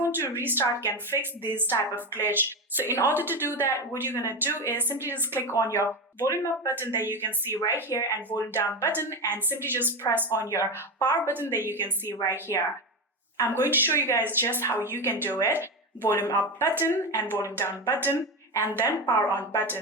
to restart can fix this type of glitch. So in order to do that, what you're going to do is simply just click on your volume up button that you can see right here and volume down button, and simply just press on your power button that you can see right here. I'm going to show you guys just how you can do it. Volume up button and volume down button and then power on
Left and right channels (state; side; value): normal; both; correlation 0.17